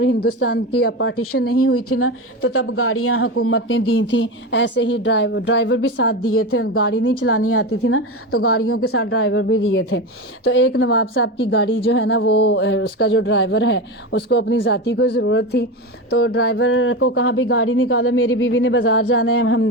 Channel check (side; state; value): both; normal; correlation 0.21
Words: ہندوستان کی پارٹیشن نہیں ہوئی تھی نا، تو تب گاڑیاں حکومت نے دی تھیں، ایسے ہی ڈرائیور بھی ساتھ دیے تھے. گاڑی نہیں چلانی آتی تھی نا، تو گاڑیوں کے ساتھ ڈرائیور بھی دیے تھے. تو ایک نواب صاحب کی گاڑی جو ہے نا، وہ اس کا جو ڈرائیور ہے اس کو اپنی ذاتی کوئی ضرورت تھی، تو ڈرائیور کو کہا بھی گاڑی نکالو، میری بیوی نے بازار جانا ہے،